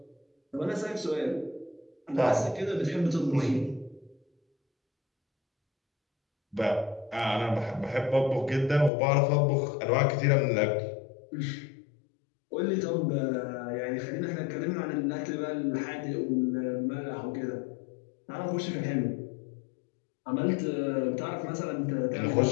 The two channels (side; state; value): right; drops out; at 8.9 s